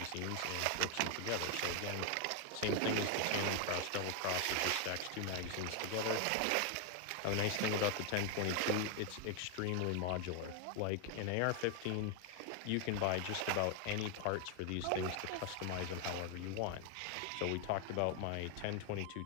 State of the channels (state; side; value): different; both; correlation 0.00